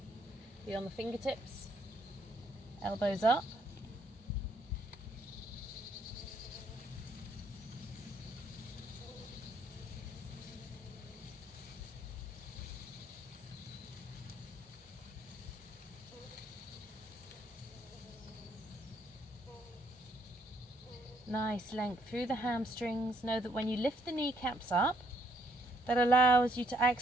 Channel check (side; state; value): both; normal; correlation 0.69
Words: Be on the fingertips, elbows up. Nice length through the hamstrings. Know that when you lift the kneecaps up, that allows you to